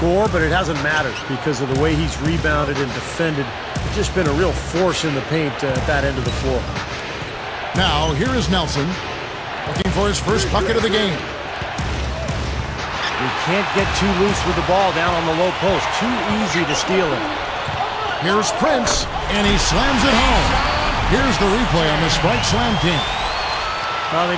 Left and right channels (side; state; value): both; identical; correlation 1.00